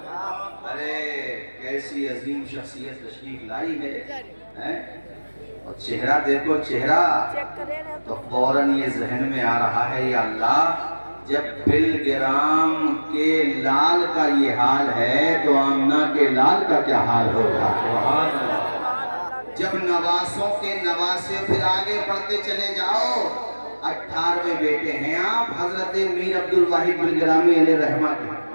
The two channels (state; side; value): inverted; both; correlation -1.00